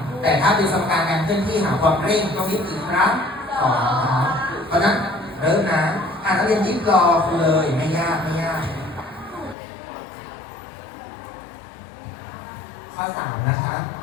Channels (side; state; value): right; drops out; at 9.6 s